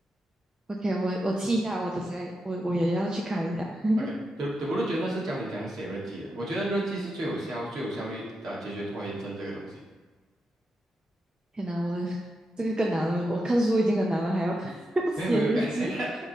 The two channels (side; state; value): both; normal; correlation 0.86